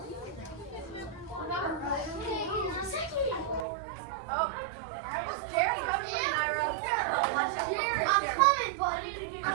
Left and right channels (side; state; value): left; drops out; at 3.7 s